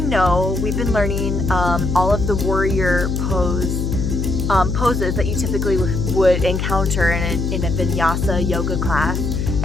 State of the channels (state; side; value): noise; left; hum, 1 dB below the sound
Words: know, we've been learning all of the warrior poses that you typically would encounter in a vinyasa yoga class.